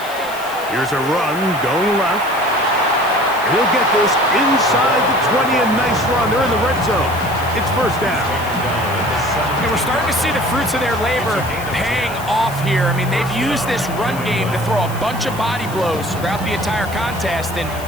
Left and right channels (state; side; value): noise; left; hiss, 16 dB below the sound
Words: Here's a run going left. And he'll get this inside the 20. A nice run. They're in the red zone. It's first down. And we're starting to see the fruits of their labor paying off here. I mean, they've used this run game to throw a bunch of body blows throughout the entire contest. And